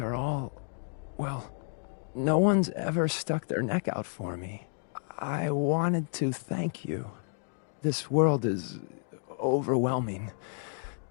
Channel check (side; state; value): right; silent; digital silence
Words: are all... well, no one's ever stuck their neck out for me. I wanted to thank you. This world is overwhelming.